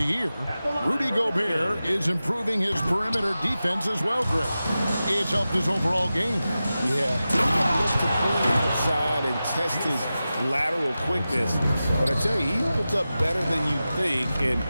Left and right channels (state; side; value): inverted; both; correlation -0.94